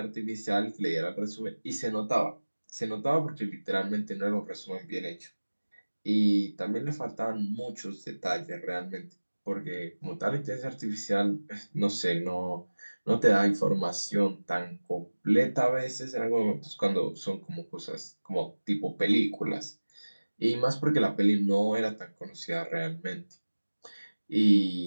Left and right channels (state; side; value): inverted; both; correlation -1.00